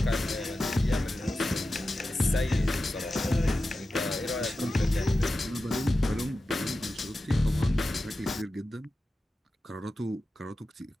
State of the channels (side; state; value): both; normal; correlation 0.93